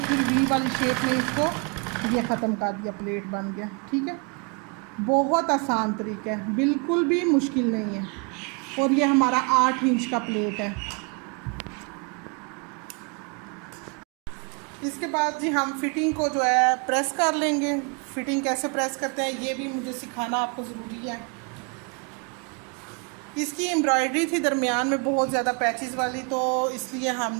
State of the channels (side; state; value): left; quieter; 35.3 dB